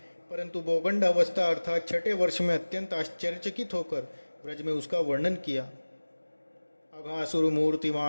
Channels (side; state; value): both; inverted; correlation -1.00